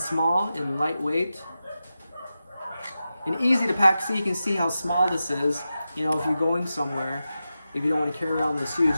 and lightweight and easy to pack. So you can see how small this is. You know, if you're going somewhere, if you don't want to carry around this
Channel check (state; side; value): inverted; both; correlation -0.92